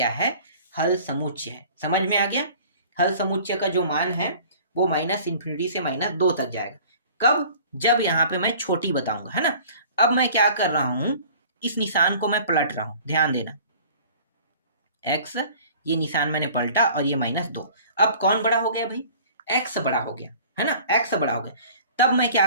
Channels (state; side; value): inverted; both; correlation -0.47